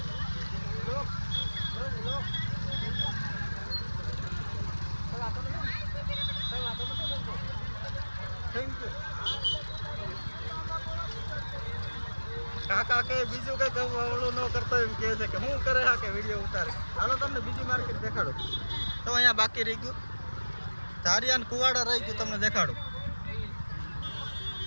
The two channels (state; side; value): inverted; both; correlation -1.00